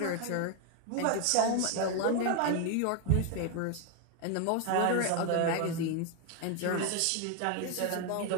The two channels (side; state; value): both; different; correlation 0.01